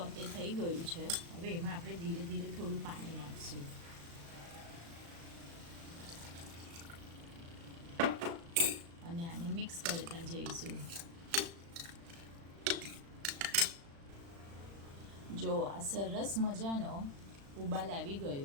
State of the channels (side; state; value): left; late; 36 ms